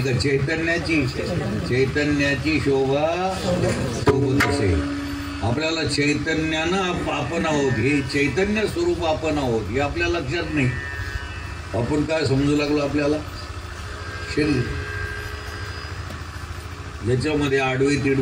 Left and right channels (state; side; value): identical; both; correlation 1.00